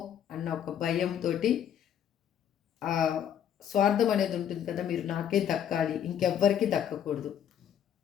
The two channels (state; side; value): quieter; right; 9.4 dB